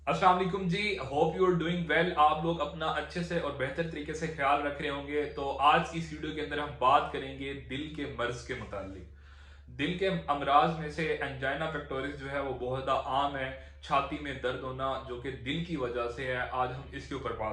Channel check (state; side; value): identical; both; correlation 1.00